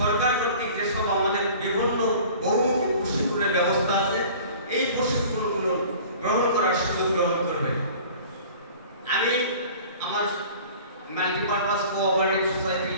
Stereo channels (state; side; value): inverted; both; correlation -0.45